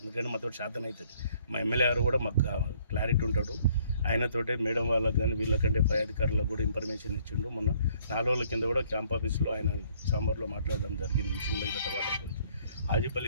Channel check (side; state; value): both; inverted; correlation -0.62